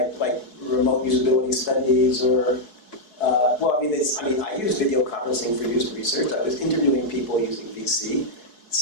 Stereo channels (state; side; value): late; right; 4.7 ms